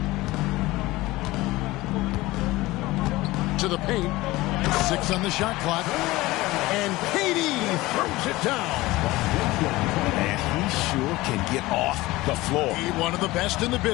To the paint. 6 on the shot clock. And KD throws it down. And he sure can get off the floor. He's one of the best in the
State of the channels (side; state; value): right; quieter; 19.3 dB